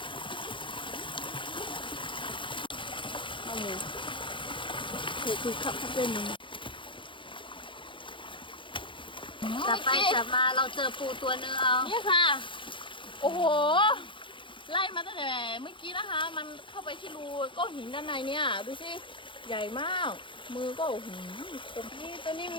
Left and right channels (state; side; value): late; right; 0.24 ms